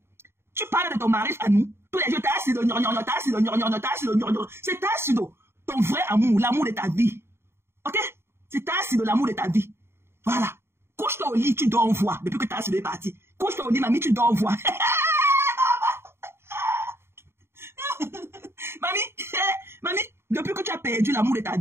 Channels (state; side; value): late; left; 0.12 ms